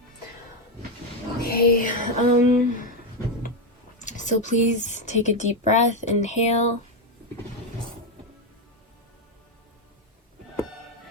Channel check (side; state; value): both; normal; correlation 0.07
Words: okay. So please take a deep breath, inhale.